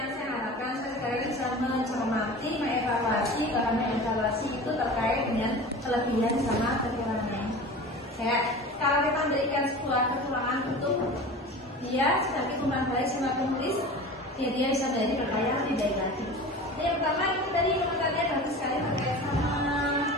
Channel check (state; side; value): normal; both; correlation 0.35